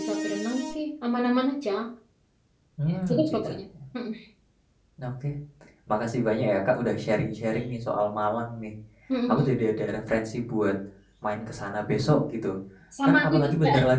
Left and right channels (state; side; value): identical; both; correlation 1.00